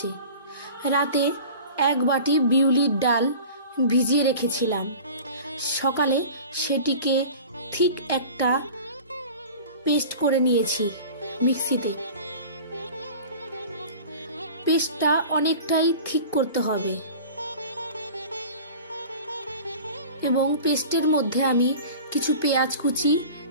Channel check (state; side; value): inverted; both; correlation -0.39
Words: রাতে 1 বাটি বিউলির ডাল ভিজিয়ে রেখেছিলাম। সকালে সেটিকে ঠিক একটা পেস্ট করে নিয়েছি মিক্সিতে। পেস্টটা অনেকটাই ঠিক করতে হবে এবং পেস্টের মধ্যে আমি কিছু পেঁয়াজ কুচি